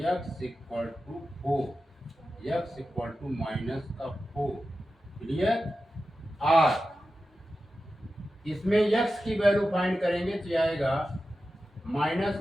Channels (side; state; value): both; normal; correlation 0.92